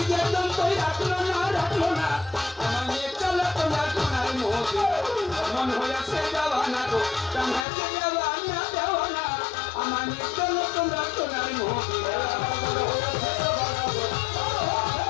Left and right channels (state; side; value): drops out; right; at 7.7 s